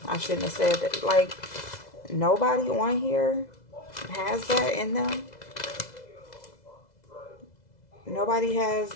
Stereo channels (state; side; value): late; right; 2.0 ms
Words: I shouldn't have said that. Like, nobody on here has that in them. Nobody has,